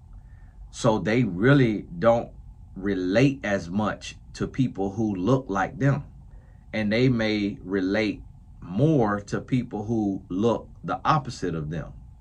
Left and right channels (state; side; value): identical; both; correlation 1.00